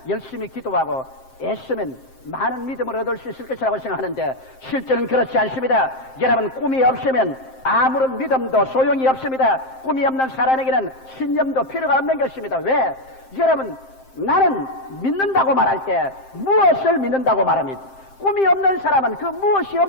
열심히 기도하고 애쓰면 많은 믿음을 얻을 수 있을 것이라고 생각하는데 실제는 그렇지 않습니다. 여러분 꿈이 없으면 아무런 믿음도 소용이 없습니다. 꿈이 없는 사람에게는 신념도 필요가 없는 것입니다. 왜? 여러분 나는 믿는다고 말할 때 무엇을 믿는다고 말합니다. 꿈이 없는 사람은 그 무엇이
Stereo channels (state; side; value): late; right; 7.6 ms